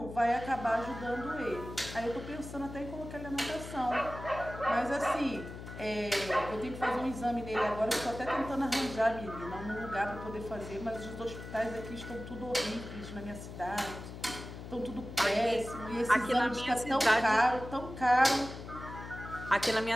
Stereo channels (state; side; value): noise; left; hum, 11 dB below the sound